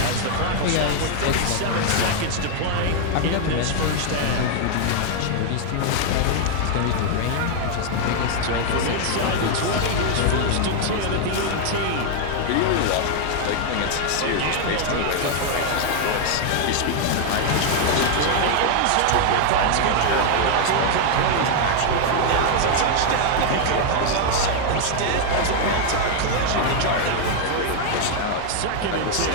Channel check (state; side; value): different; both; correlation 0.00